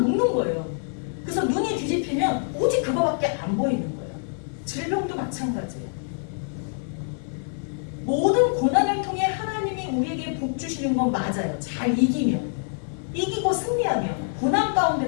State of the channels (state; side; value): silent; right; 61 dB below the other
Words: 거예요. 그래서 눈이 뒤집히면 오직 그거밖에 안 보이는 거예요. 질병도 마찬가지예요. 모든 고난을 통해 하나님이 우리에게 복 주시는 건 맞아요. 잘 이기고 승리하며 고난